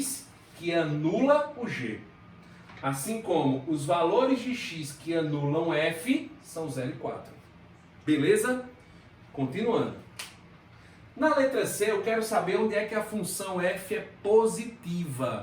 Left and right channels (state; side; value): identical; both; correlation 1.00